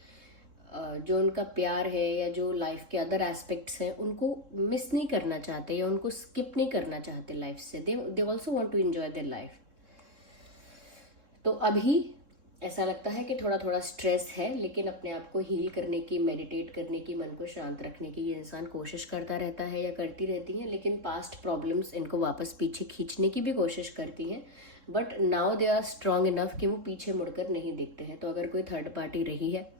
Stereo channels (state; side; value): late; left; 3.7 ms